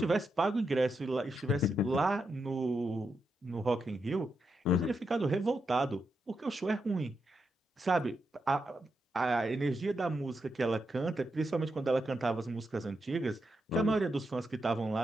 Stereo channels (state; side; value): normal; both; correlation 0.84